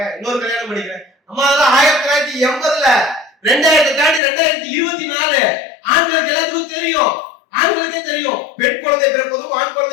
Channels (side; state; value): right; drops out; at 4.2 s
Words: இன்னொரு கல்யாணம் பண்ணிக்கிறேன். அம்மா அதெல்லாம் 1980ல 2000 தாண்டி 2024 ஆண்களுக்கு எல்லாத்துக்கும் தெரியும். ஆண்களுக்கே தெரியும் பெண் குழந்தை பிறப்பதும் ஆண்